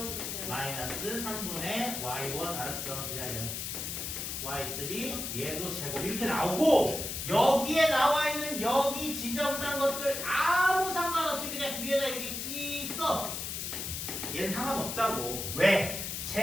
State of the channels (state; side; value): noise; left; hiss, 4 dB below the sound